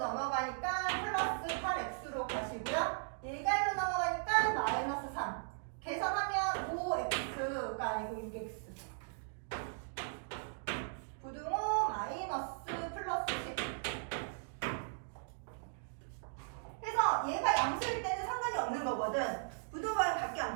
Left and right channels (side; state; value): left; silent; digital silence